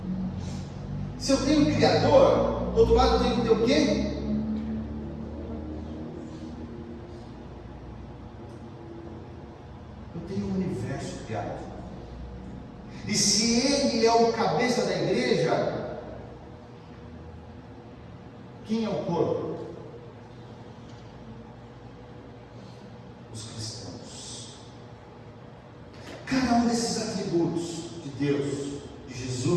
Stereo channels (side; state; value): both; identical; correlation 1.00